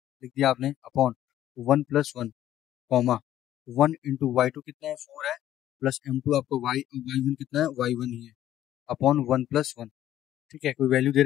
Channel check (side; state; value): right; quieter; 12.4 dB